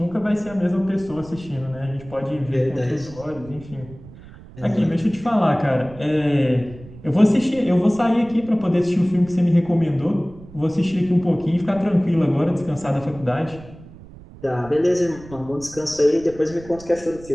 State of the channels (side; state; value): right; noise; rumble, 19 dB below the sound